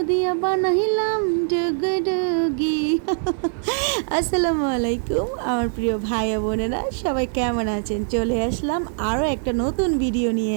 দিয়া বানাইলাম ডুগডুগি। আসসালামু আলাইকুম আমার প্রিয় ভাই বোনেরা, সবাই কেমন আছেন? চলে আসলাম আরও একটা নতুন ভিডিও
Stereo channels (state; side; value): silent; left; 61 dB below the other